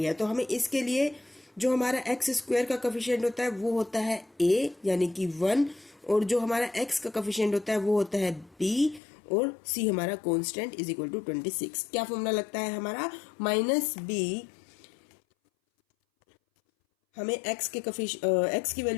है, तो हमें इसके लिए जो हमारा एक्स स्क्वायर का कोफिशिएंट होता है वो होता है a यानी कि 1, और जो हमारा x का कोफिशिएंट होता है वो होता है b, और c हमारा कांस्टेंट इज इक्वल टू 26. क्या फॉर्मूला लगता है हमारा? माइनस b, हमें x की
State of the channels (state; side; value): drops out; right; at 9.0 s